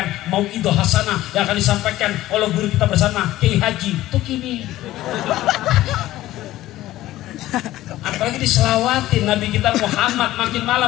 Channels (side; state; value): right; quieter; 15.5 dB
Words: mau'idoh hasanah yang akan disampaikan oleh guru kita bersama Kiai Haji tuh kini. Apalagi diselawatin Nabi kita Muhammad, makin